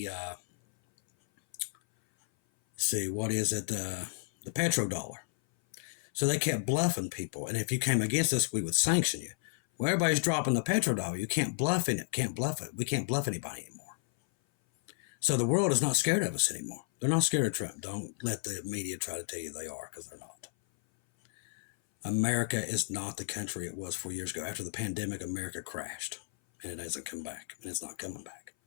petrodollar. So they kept bluffing people. And if you came against us, we would sanction you. Well, everybody's dropping the petrodollar. You can't bluff it. Can't bluff it. We can't bluff anybody anymore. So the world is not scared of us anymore. They're not scared of Trump. Don't let the media try to tell you they are, because they're not. America is not the country it was 4 years ago. After the pandemic, America crashed, and it hasn't come back, and it's not coming back.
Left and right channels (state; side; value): silent; right; 56 dB below the other